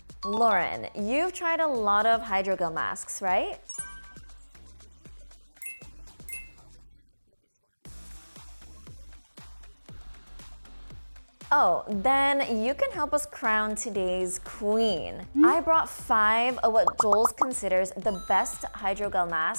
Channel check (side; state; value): both; inverted; correlation -1.00